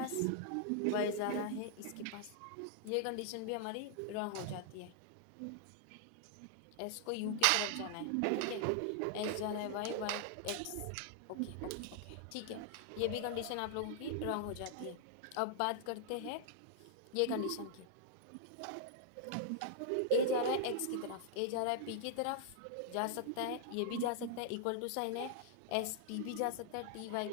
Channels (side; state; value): both; different; correlation -0.01